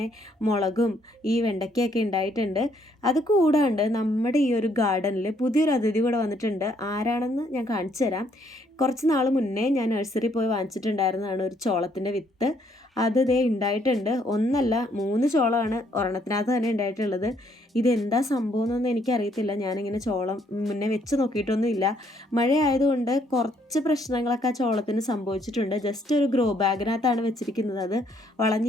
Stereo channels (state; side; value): normal; both; correlation 0.68